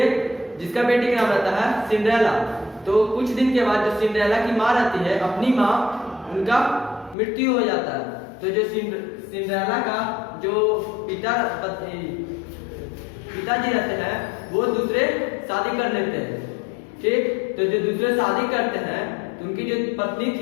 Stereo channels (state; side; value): drops out; right; at 7.2 s